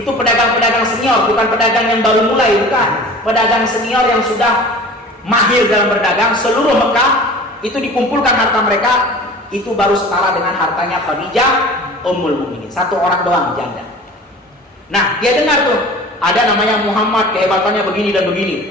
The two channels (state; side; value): normal; both; correlation 0.41